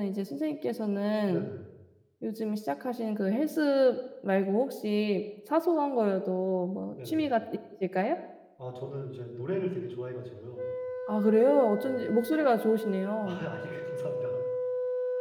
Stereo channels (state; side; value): identical; both; correlation 1.00